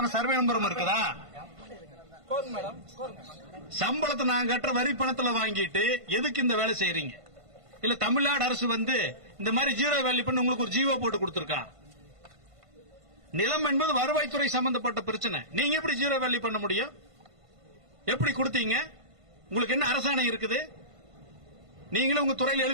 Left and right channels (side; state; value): left; late; 1.5 ms